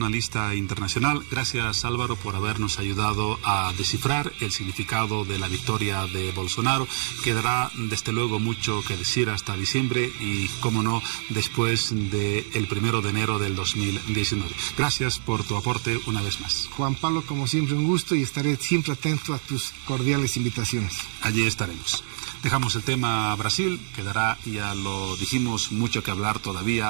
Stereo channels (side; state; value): left; silent; digital silence